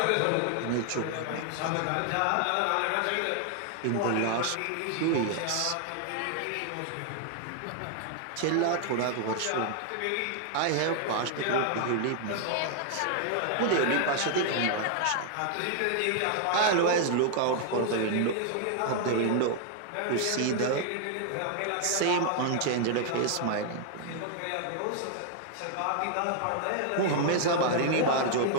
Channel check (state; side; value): different; both; correlation 0.00